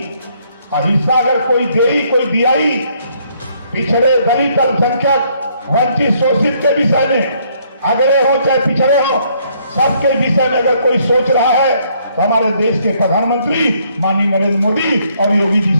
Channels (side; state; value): both; inverted; correlation -0.68